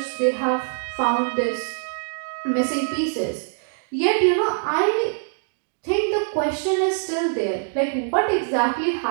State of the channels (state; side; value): silent; left; digital silence